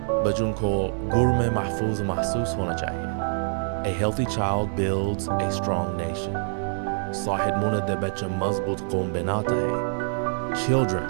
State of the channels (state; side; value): silent; left; 61 dB below the other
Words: Bachon ko gur mein mahfuz mahsus hona chahiye. A healthy child builds a strong nation. Sahid muna de bacha mazboot qawm banata hai. Children